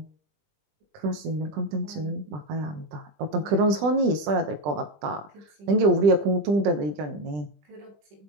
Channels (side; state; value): left; late; 20 ms